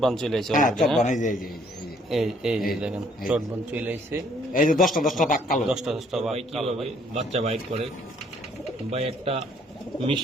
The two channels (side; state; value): both; normal; correlation 0.64